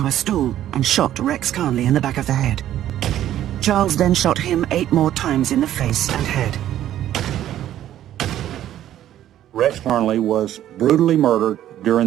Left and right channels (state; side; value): quieter; left; 12.1 dB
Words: a stool, and shot Rex Carnley in the back of the head. Charles then shot him 8 more times in the face and head. Rex Carnley was brutally murdered during